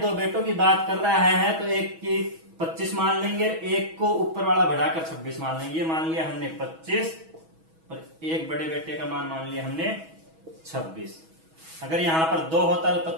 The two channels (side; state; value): left; late; 6.2 ms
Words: बेटों की बात कर रहा है, तो एक की 25 मान लेंगे, एक को ऊपर वाला बढ़ाकर 26 मान लेंगे। ये मान लिया हमने 25 और एक बड़े बेटे का मान लिया हमने 26। अगर यहां पर 2 होता तो